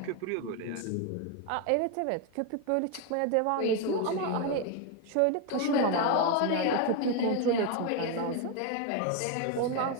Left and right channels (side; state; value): both; different; correlation 0.01